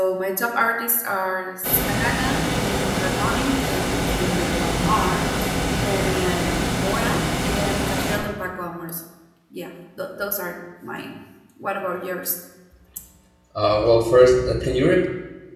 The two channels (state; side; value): identical; both; correlation 1.00